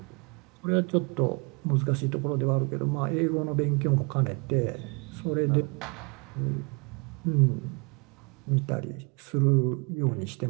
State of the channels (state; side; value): quieter; left; 33.3 dB